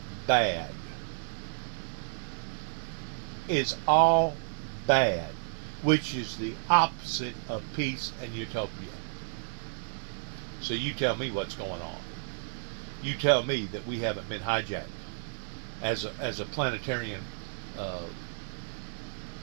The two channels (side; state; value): left; silent; digital silence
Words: bad. Is all bad, which is the opposite of peace and utopia. So you tell me what's going on. You tell me that we haven't been hijacked as a planetarian